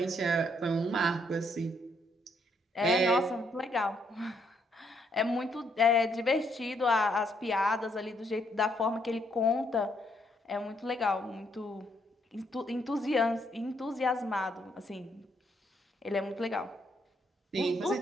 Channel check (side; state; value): both; normal; correlation 0.72